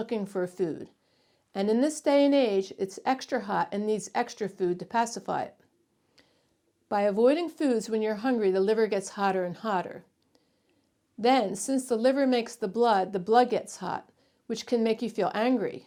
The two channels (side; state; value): both; identical; correlation 1.00